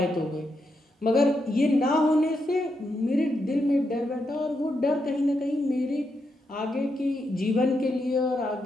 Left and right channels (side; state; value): both; normal; correlation 0.83